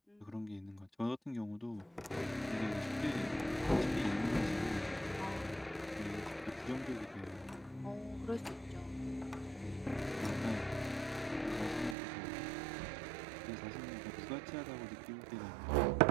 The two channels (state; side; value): drops out; left; at 12.0 s